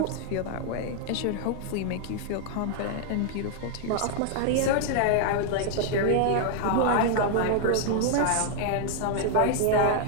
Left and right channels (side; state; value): both; different; correlation 0.00